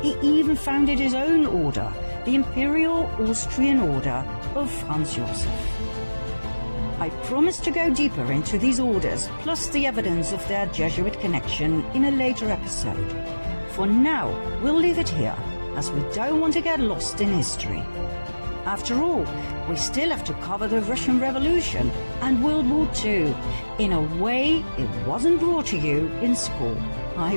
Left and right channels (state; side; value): inverted; both; correlation -1.00